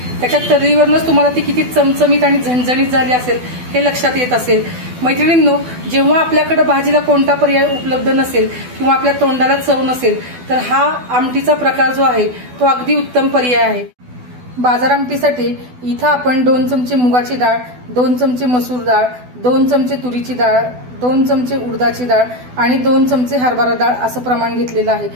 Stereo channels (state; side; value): late; left; 12 ms